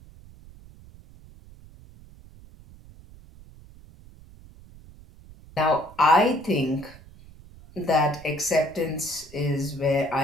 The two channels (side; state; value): right; noise; rumble, 21 dB below the sound